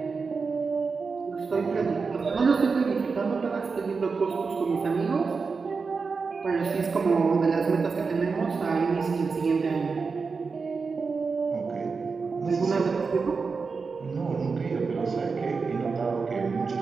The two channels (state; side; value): quieter; left; 4.8 dB